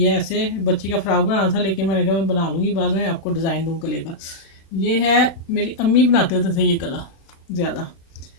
ऐसे बच्ची का फ्रॉक बनाना था, लेकिन मैंने कहा मैं बना लूँगी, बाद में आपको डिज़ाइन दूँ गले का। ये है, मेरी अम्मी बनाते होते थे ये गला ज़्यादा।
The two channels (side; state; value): right; late; 36 ms